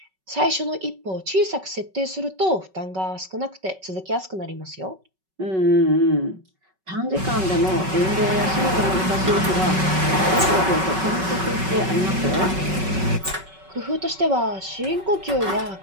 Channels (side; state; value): left; late; 5.3 ms